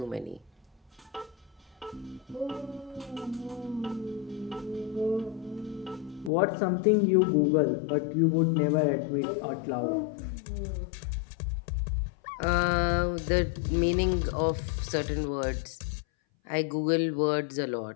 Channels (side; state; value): right; drops out; at 6.3 s